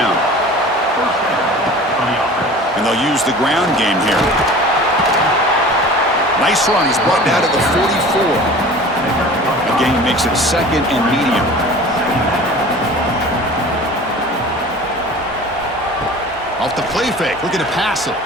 And they'll use the ground game here. Nice run. He's brought down to the 44. The game makes it 2nd and medium. Off the play fake. Looking to pass it.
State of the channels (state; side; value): normal; both; correlation 0.41